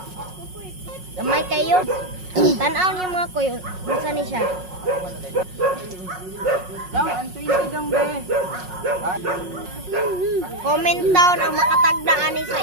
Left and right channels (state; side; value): late; left; 5.5 ms